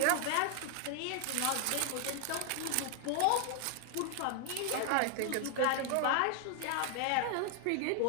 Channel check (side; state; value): both; different; correlation 0.00